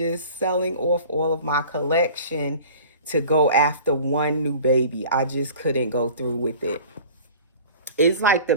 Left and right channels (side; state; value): both; inverted; correlation -0.43